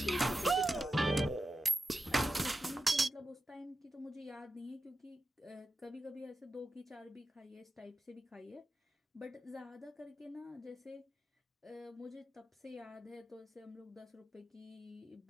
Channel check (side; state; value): both; normal; correlation 0.91